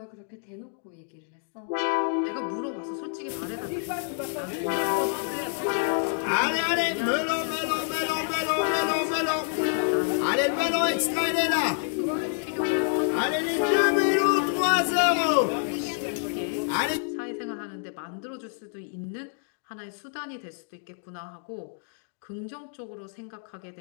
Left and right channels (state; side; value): silent; right; 60 dB below the other